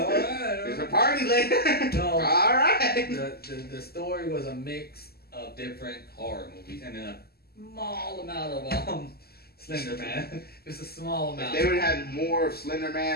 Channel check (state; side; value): late; right; 0.46 ms